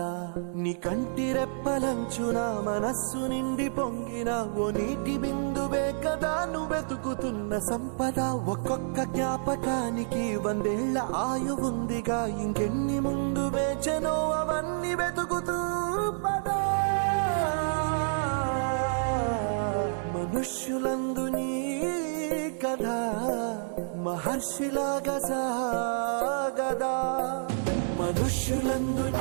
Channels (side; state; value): left; silent; 59 dB below the other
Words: నీ కంటి రెప్పలంచున మనస్సు నిండి పొంగిన ఓ నీటి బిందువే కదా నువ్వెతుకుతున్న సంపద. ఒక్కొక్క జ్ఞాపకానికి 100 ఏళ్ల ఆయువుందిగా, ఇంకెన్ని ముందు వేచనో అవన్నీ వెతుకుతూ పదా. మనుష్యులందు నీ కథ మహర్షిలాగా సాగదా. మనుష్యులందు